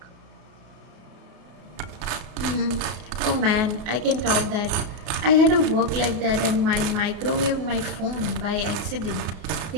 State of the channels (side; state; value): left; late; 33 ms